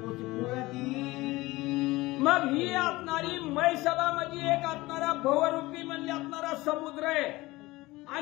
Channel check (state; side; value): quieter; right; 20.0 dB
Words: मग ही असणारी म्हैसभा म्हणजे एक असणारा भवरूपी म्हणले असणारा समुद्र आहे